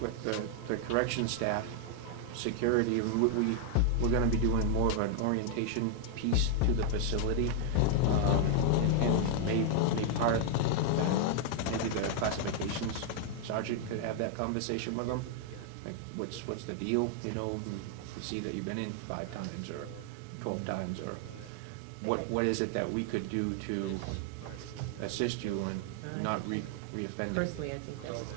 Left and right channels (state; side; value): different; both; correlation 0.00